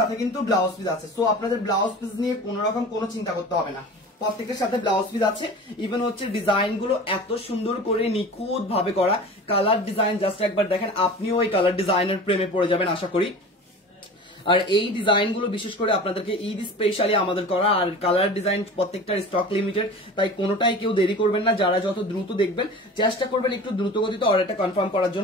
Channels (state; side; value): normal; both; correlation 0.37